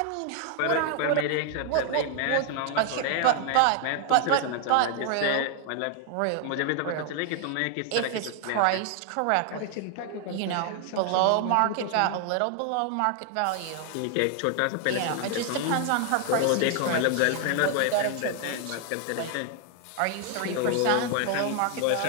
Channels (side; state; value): both; different; correlation 0.00